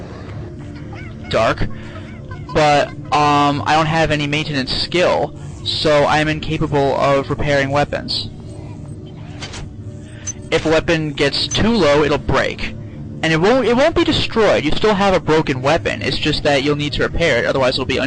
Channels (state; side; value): identical; both; correlation 1.00